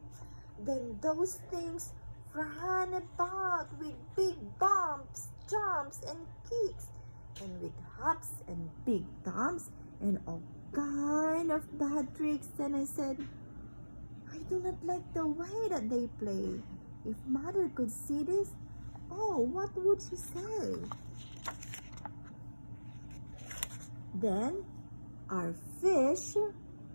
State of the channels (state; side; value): inverted; both; correlation -1.00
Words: Then those things ran about with big bumps, jumps, and kicks, and with hops and big thumps and all kind of bad tricks. And I said, "I do not like the way that they play. If Mother could see this, oh, what would she say?" Then our fish